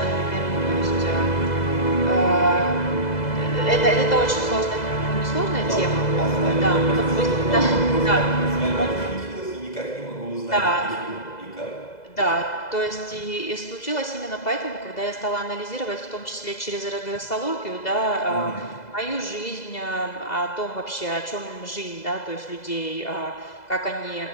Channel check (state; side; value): late; right; 2.0 ms